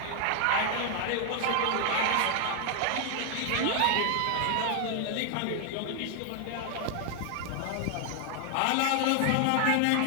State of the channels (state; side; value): different; both; correlation 0.00